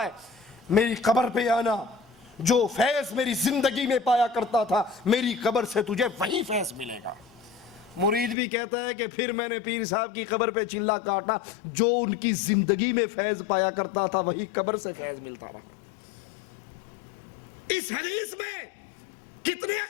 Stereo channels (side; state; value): right; drops out; at 8.3 s